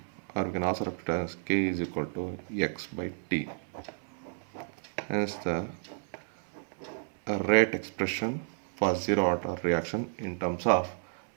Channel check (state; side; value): silent; left; 57 dB below the other